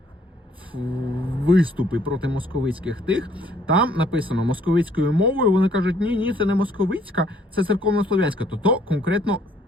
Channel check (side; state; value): both; normal; correlation 0.63